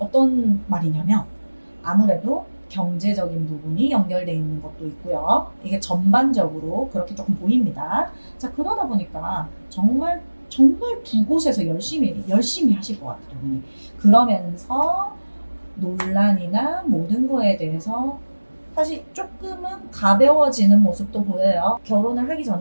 말이냐면 아무래도 경제적인 부분이 연결되어 있는 것도 있고요. 이게 전반적으로 그렇게 조금 보입니다. 자, 그러다 보니까 정말 두 곳에서 열심히 하실 것 같아요. 분이. 그러면서 논란이나 모든 거에 대해서 사실 조금은 가벼워지는 모습도 보여요. 결혼을 하기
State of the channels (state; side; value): inverted; both; correlation -1.00